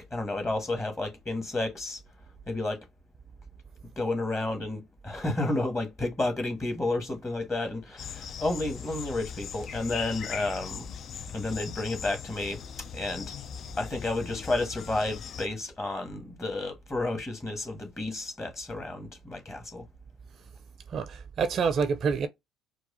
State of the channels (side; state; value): both; normal; correlation 0.82